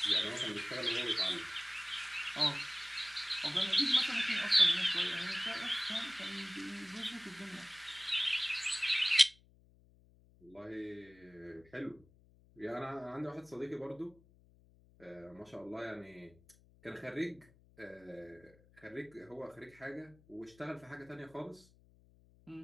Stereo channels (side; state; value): left; noise; hum, 27 dB below the sound